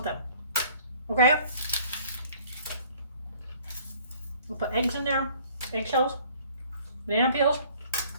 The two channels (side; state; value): both; inverted; correlation -0.54